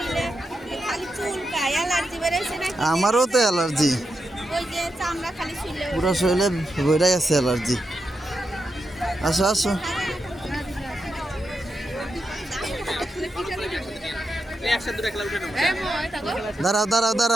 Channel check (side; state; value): both; normal; correlation 0.86